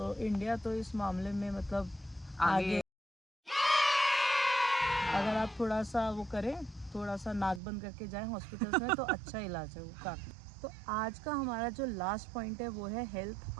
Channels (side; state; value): left; drops out; at 7.6 s